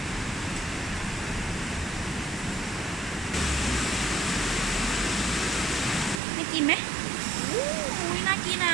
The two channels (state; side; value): drops out; left; at 6.2 s